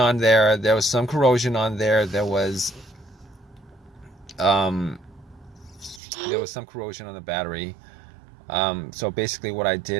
there. There was some corrosion on there. There was some corrosion on the battery. So basically what I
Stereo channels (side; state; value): left; drops out; at 6.0 s